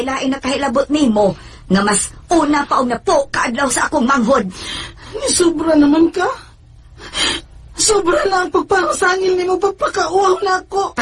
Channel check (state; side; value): identical; both; correlation 1.00